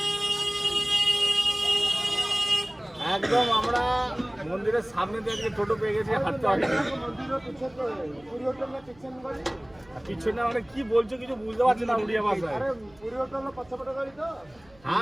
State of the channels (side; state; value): right; noise; hum, 28 dB below the sound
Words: একদম। আমরা মন্দিরের সামনে দিয়ে আজকে টোটো পেয়ে গেছি, হাঁটতে হবে। পিছনে মানে কি বলছো কিছু বুঝতে পারছি না উড়িয়া ভাষায়।